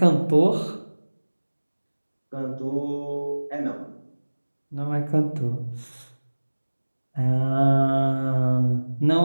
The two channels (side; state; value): both; inverted; correlation -1.00